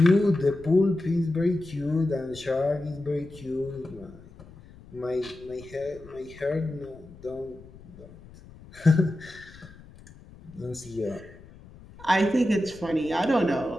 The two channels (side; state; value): left; noise; rumble, 20 dB below the sound